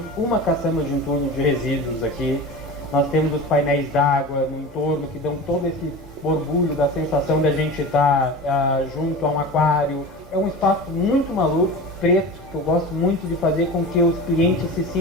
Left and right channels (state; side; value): normal; both; correlation 0.32